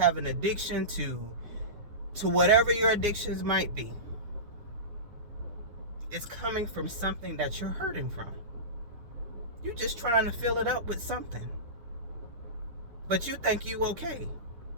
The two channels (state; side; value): late; left; 9.7 ms